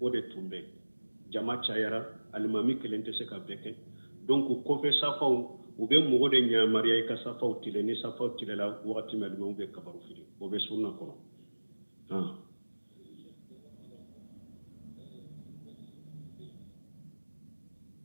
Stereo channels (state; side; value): inverted; both; correlation -1.00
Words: o de tun bɛ jama cayara alimami kelen tɛ se ka bɛɛ kɛ donc kɔfɛ safaw u bɛ mɔgɔ de ɲamariya i ka safaw tile ni safaw tile la wagati min alimami bɛ kabaru fili o bɛ sunna kɔnɔ